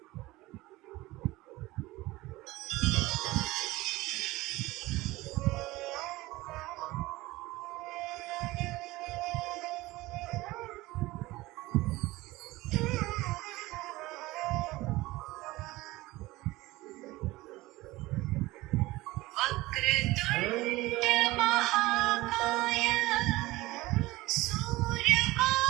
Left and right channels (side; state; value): left; quieter; 19.3 dB